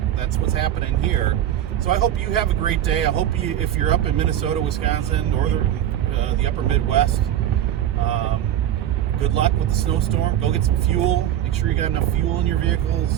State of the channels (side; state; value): left; quieter; 11.3 dB